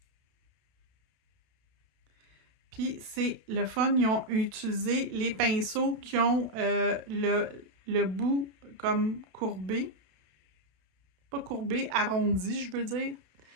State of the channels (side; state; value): left; late; 32 ms